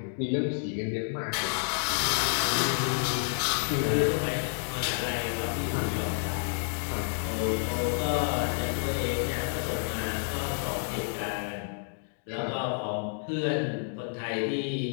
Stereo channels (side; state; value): right; silent; digital silence